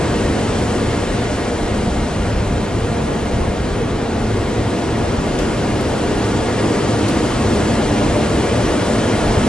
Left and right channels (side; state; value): both; normal; correlation 0.88